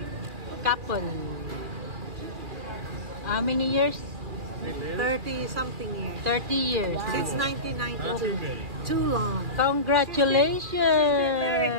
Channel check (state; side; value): late; left; 2.2 ms